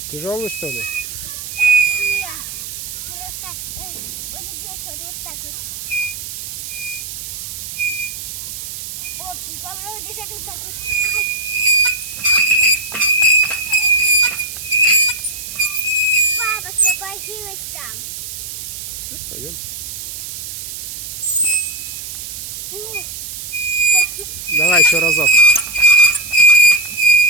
Тяжелый, что ли? Нет, просто вот здесь вот так вот. О, попробуй держать вот так вот. Ай. Папа освободилась там. Сейчас пойдем. О, Давай еще разок.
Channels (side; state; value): right; noise; hiss, 8 dB below the sound